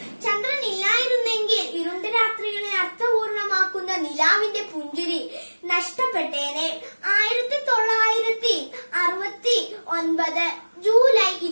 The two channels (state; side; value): inverted; both; correlation -1.00